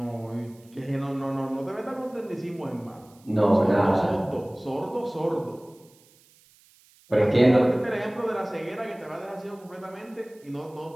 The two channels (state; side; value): noise; right; hiss, 29 dB below the sound